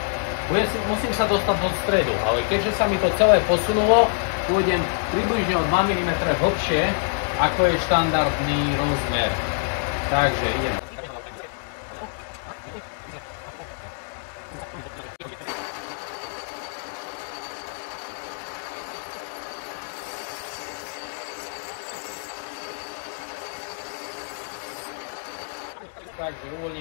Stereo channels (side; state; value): right; silent; 61 dB below the other